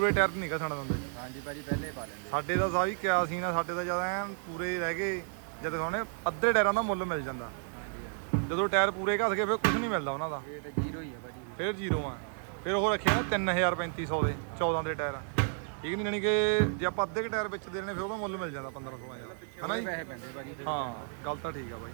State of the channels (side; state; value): left; silent; 56 dB below the other